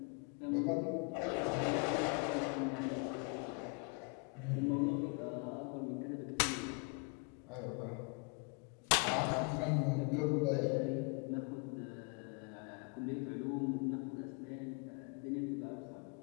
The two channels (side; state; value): right; quieter; 33.3 dB